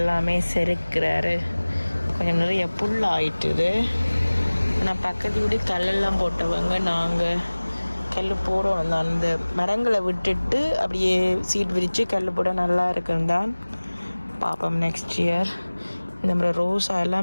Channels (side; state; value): both; inverted; correlation -1.00